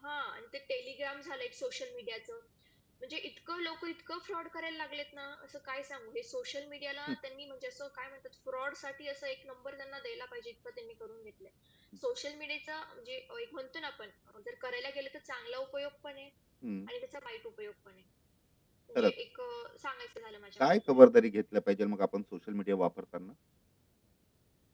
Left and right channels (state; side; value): identical; both; correlation 1.00